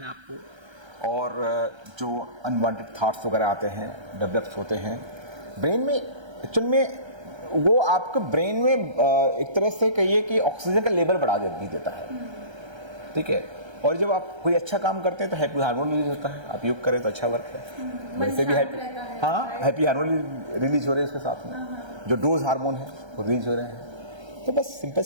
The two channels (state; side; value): late; left; 1.3 ms